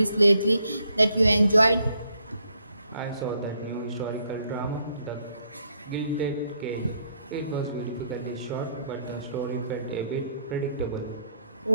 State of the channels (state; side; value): inverted; both; correlation -0.72